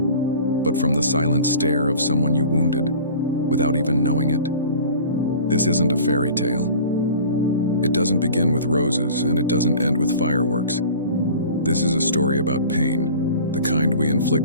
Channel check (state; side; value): inverted; both; correlation -0.42